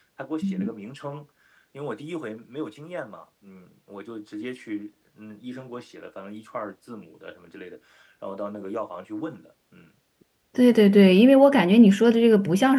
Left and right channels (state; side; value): identical; both; correlation 1.00